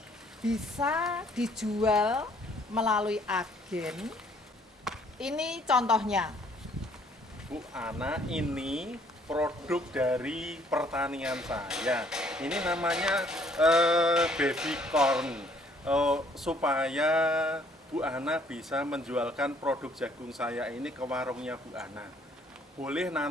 bisa dijual melalui agen. Ini contohnya. Bu Ana, ini produk dari pertanian saya. Ini namanya baby corn. Supaya Bu Ana bisa menjualkan produk jagung saya ini ke warungnya Bu Ana. Boleh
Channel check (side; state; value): both; normal; correlation 0.62